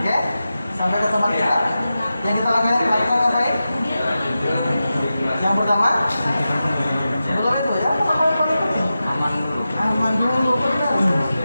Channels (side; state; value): both; inverted; correlation -0.92